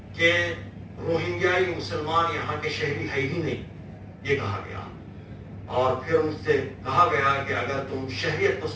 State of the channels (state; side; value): identical; both; correlation 1.00